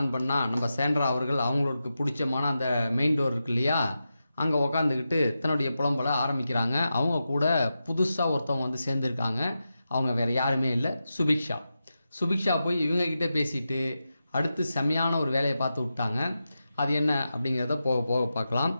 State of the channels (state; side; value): inverted; both; correlation -0.90